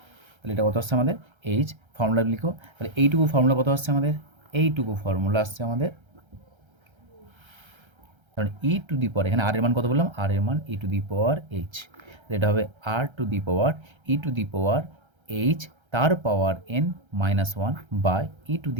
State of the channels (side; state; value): left; late; 1.3 ms